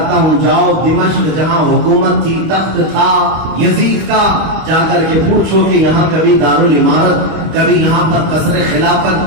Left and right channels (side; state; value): left; late; 25 ms